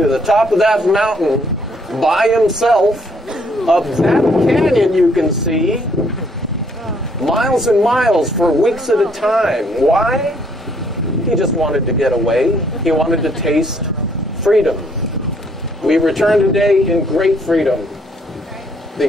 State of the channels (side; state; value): both; normal; correlation 0.67